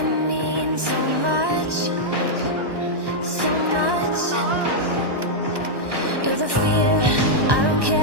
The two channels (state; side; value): late; left; 1.2 ms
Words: mean so much, so much. You're the fear, I don't